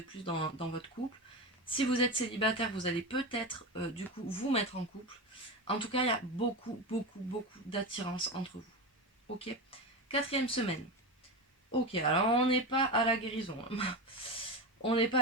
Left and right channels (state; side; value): normal; both; correlation 0.21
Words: plus dans votre couple. Si vous êtes célibataire, vous allez peut-être du coup vous mettre en couple. En tout cas, il y a beaucoup, beaucoup, beaucoup d'attirance entre vous. Ok. Quatrième semaine. Ok, alors on n'est pas à la guérison, hein. On n'est pas